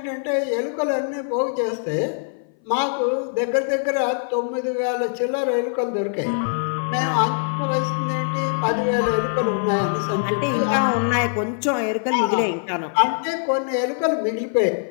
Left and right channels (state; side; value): silent; right; 60 dB below the other